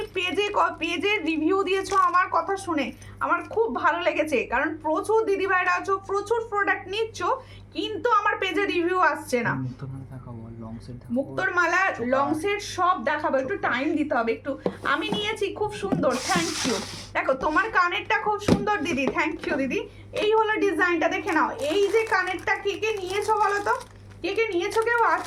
পেজে রিভিউ দিয়েছো আমার কথা শুনে, আমার খুব ভালো লেগেছে, কারণ প্রচুর দিদিভাইরা আছো, প্রচুর প্রোডাক্ট নিচ্ছ, কিন্তু আমার পেজে রিভিউ আসছে না। মুক্তোর মালা লং সেট সব দেখাবো, একটু টাইম দিতে হবে একটু। আমি নিয়েছি, খুব সুন্দর, থ্যাংক ইউ। দেখো তোমার কানেরটা খুব সুন্দর দিদি, থ্যাংক ইউ দিদি। এই হলো ডিজাইনটা, দেখে নাও। এই যে কানেরটা কে নিয়েছো বলো তো, কে নিয়েছো, কেউ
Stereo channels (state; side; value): identical; both; correlation 1.00